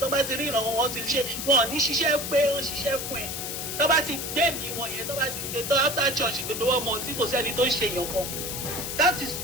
bá ti rí ìrànwọ́ wọn ti ṣe wọn ò ní ṣiṣẹ́ pé wọ́n ṣiṣẹ́ fún ẹ. Tó bá ti gbé mi wọn yẹn tó bá ti gbé tó after church gbogbo wọn mọ̀ sí kò sẹ́ni tó ń ṣe èèyàn kan. That is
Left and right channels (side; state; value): left; noise; hiss, 5 dB below the sound